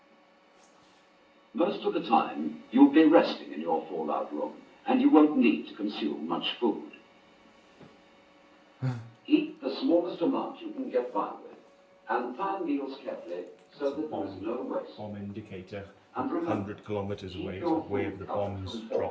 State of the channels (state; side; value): identical; both; correlation 1.00